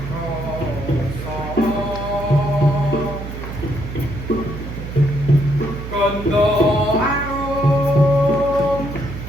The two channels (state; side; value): noise; right; hum, 8 dB below the sound